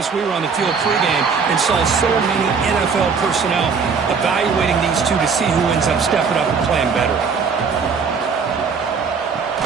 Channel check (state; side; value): quieter; left; 5.6 dB